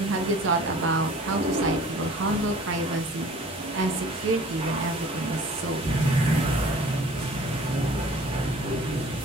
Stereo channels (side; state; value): both; normal; correlation 0.48